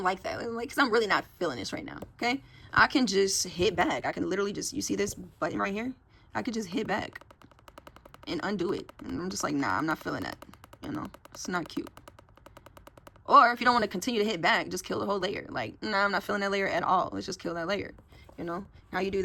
like that. Like, because I'm really not feeling this right now. Okay. I can just hit back. I can literally just, you see this button right here? I could just hit back and undo it. And I'm just like, nah, I'm not feeling that. You know, it's not cute. Or if you don't want to continue to hit back, just kill the whole layer. Like, nah, I'm not feeling that layer at all. Let's just kill that layer. You know, how you do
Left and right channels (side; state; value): both; identical; correlation 1.00